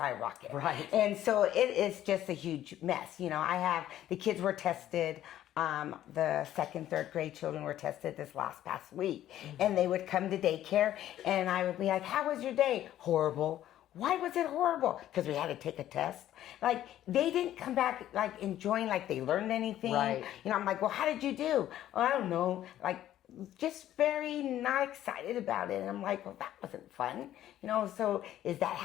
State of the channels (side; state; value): right; quieter; 12.5 dB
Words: Right. And so it is just a huge mess. The kids were tested. The second, third grade children were tested this past week. Mm-hmm. And they would come to daycare and I would be like, how was your day? Horrible. Why was it horrible? Because we had to take a test. Like, they didn't come back, like, enjoying, like, they learned anything. Right. I'm like, well, how did you do? Oh, I don't know. Like, just very not excited about it. And I'm like, well, that wasn't fun. So is that